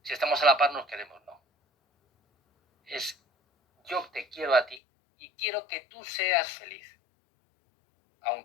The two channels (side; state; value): right; drops out; at 4.8 s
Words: si estamos a la par nos queremos, no. Es yo te quiero a ti y quiero que tú seas feliz.